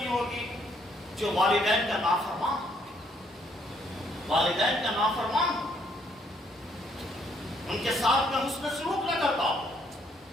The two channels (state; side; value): normal; both; correlation 0.69